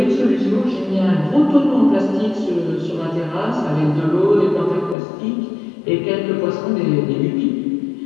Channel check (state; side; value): drops out; right; at 5.0 s